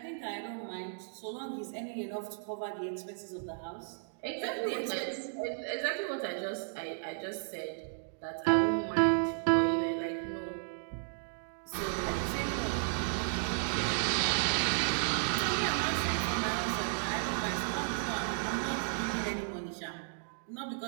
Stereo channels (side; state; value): left; silent; digital silence